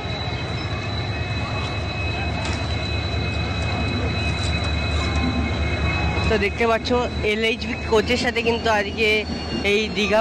তো দেখতে পাচ্ছ LHB কোচের সাথে কিন্তু আজকে এই দীঘা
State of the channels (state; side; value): identical; both; correlation 1.00